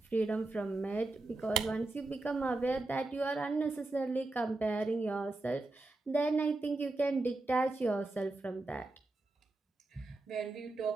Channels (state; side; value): quieter; left; 3.0 dB